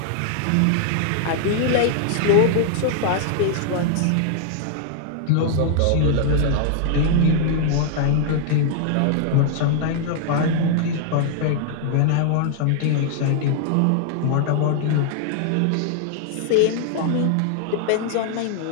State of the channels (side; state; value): both; different; correlation -0.01